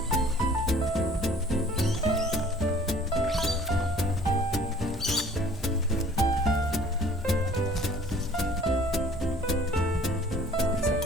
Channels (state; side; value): normal; both; correlation 0.52